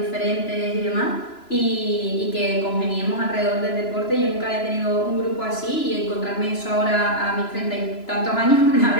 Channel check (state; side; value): late; right; 3.0 ms